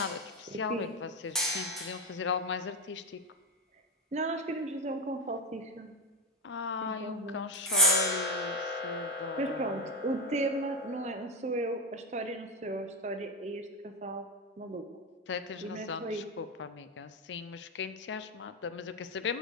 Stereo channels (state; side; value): normal; both; correlation 0.12